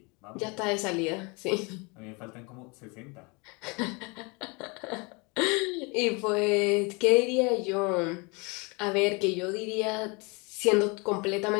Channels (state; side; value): quieter; right; 29.0 dB